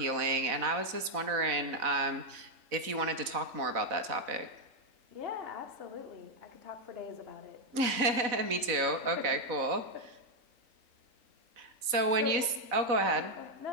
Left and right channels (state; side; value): late; left; 4.0 ms